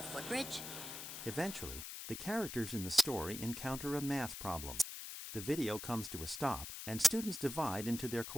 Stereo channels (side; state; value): left; noise; hiss, 8 dB below the sound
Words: footbridge? Eventually, the characters in the story encounter a math problem. The video comes to a stop, and students divide into their